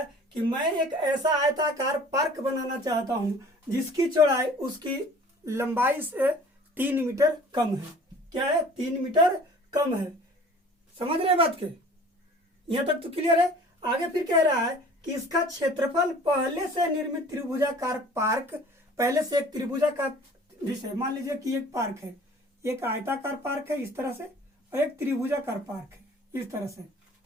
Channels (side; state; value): both; normal; correlation 0.48